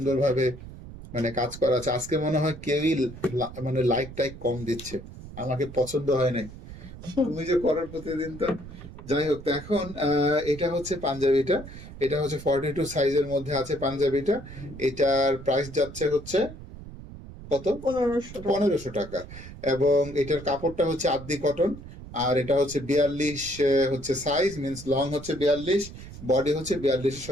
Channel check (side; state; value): right; noise; rumble, 14 dB below the sound